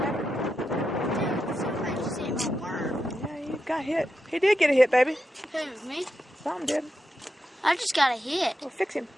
Dude, somebody just hit my worm. Yeah, you got hit. He did get a hit, baby. Who, me? Something did. I just got a hit. Well, fix him.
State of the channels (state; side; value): normal; both; correlation 0.87